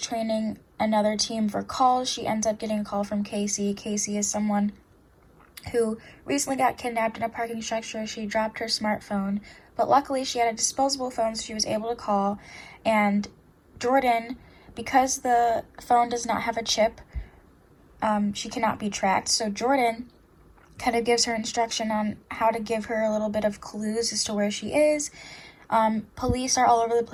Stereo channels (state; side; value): identical; both; correlation 1.00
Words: another team for calls, she ends up getting a call from Casey. Casey is someone who recently got kidnapped in a parking structure. She dropped her smartphone, but luckily she had a disposable phone, so she was able to call. And Jordan, because the phone does not have a chip, she cannot be tracked. So Jordan kind of gives her instruction on how to give her a little bit of clues as to where she is. Police are all over the